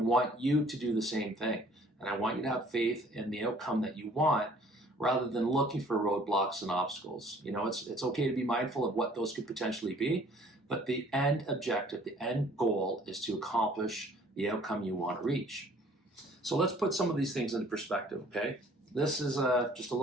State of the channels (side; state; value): both; normal; correlation 0.56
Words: you to do the same thing. And I want you to have faith in the outcome that you want rather than looking for roadblocks and obstacles. It's okay to be mindful of what those could potentially be, but the end objective, the end goal is to accomplish the outcome you want to reach. So let's put some of these things into perspective, okay? This is just a